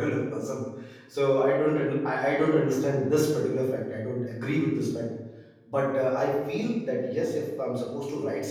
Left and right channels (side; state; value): both; identical; correlation 1.00